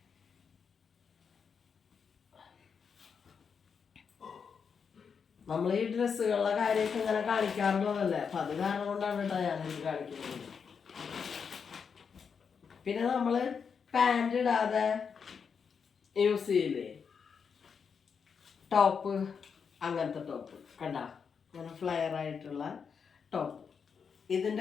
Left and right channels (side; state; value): right; quieter; 6.3 dB